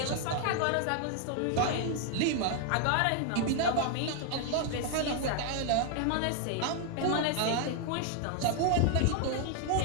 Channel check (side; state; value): both; different; correlation 0.00